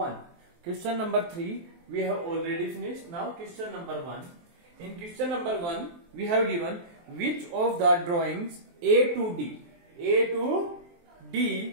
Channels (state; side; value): late; left; 23 ms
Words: Question number 3 we have already finished. Now question number 1. In question number 1 we have given which of the drawings A to